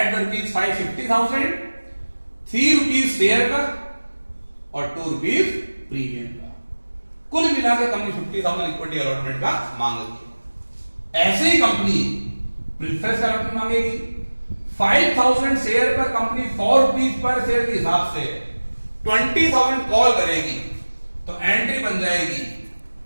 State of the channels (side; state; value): both; inverted; correlation -1.00